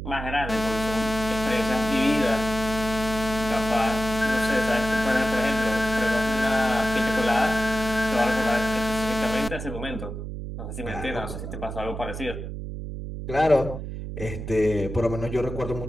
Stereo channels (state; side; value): noise; right; hum, 7 dB below the sound